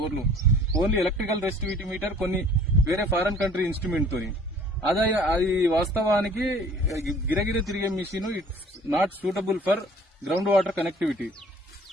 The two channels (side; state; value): both; normal; correlation 0.52